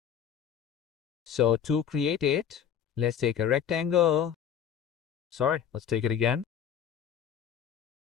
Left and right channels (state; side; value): quieter; right; 8.6 dB